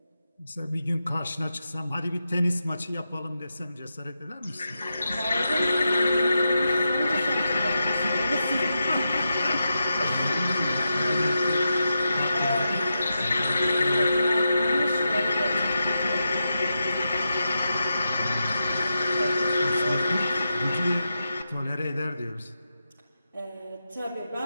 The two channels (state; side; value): inverted; both; correlation -0.88